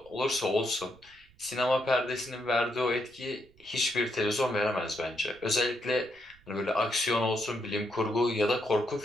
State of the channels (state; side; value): noise; right; rumble, 28 dB below the sound